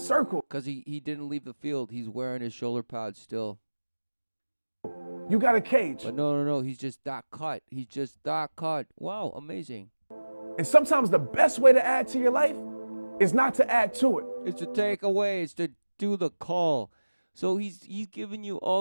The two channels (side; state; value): both; inverted; correlation -1.00